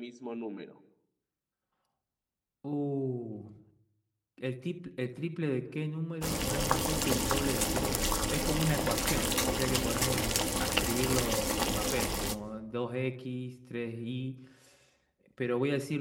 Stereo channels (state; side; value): identical; both; correlation 1.00